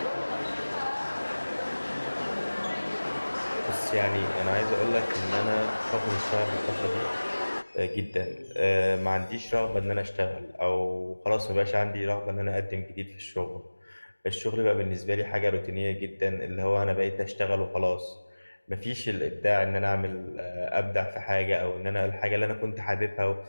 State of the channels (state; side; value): inverted; both; correlation -1.00